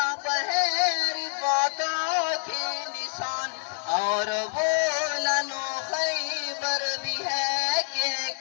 ہے رفاتوں کے نشان، اور بولن و خیبر بھی ہے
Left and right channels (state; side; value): silent; right; 60 dB below the other